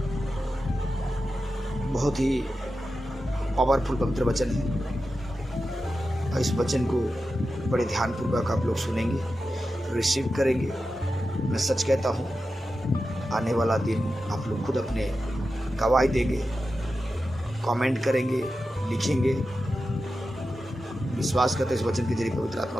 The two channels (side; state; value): both; normal; correlation 0.91